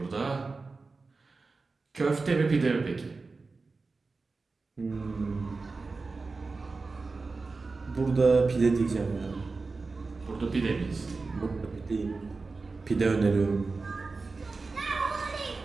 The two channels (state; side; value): quieter; left; 4.0 dB